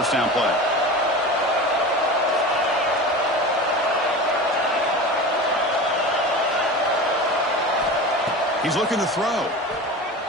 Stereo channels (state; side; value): normal; both; correlation 0.31